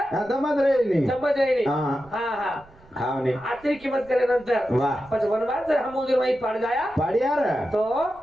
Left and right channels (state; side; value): noise; right; rumble, 26 dB below the sound